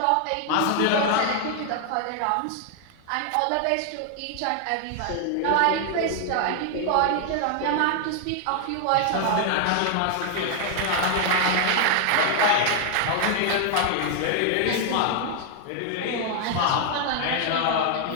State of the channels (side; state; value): both; different; correlation 0.00